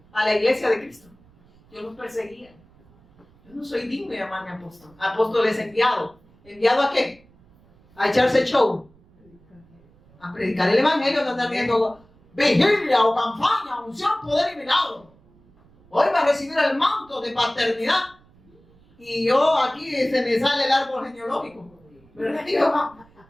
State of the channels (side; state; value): right; noise; rumble, 29 dB below the sound